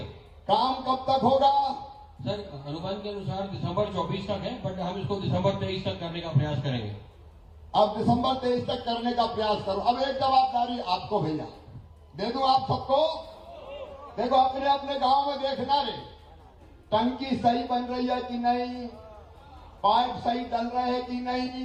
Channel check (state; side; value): identical; both; correlation 1.00